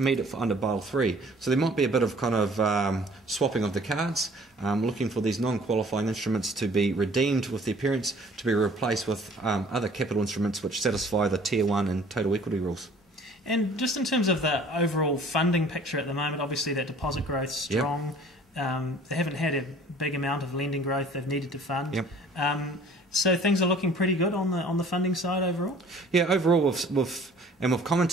it under Basel III. So there might be a bit of kind of swapping of the cards, looking for these non-qualifying instruments to be redeemed with their parents to be replaced with other capital instruments which satisfy the Tier 1 and total equity rules. And just in terms of the overall funding picture at the moment, obviously that deposit growth is strong. They haven't had a big amount of lending growth they've needed to fund. So things are looking pretty good on the funding side overall? Yeah, overall we've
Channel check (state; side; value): normal; both; correlation 0.52